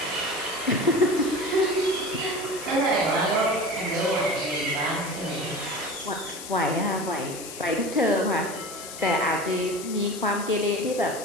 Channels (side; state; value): left; noise; hiss, 11 dB below the sound